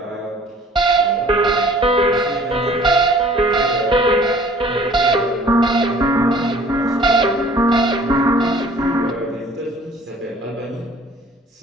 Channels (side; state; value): both; normal; correlation 0.52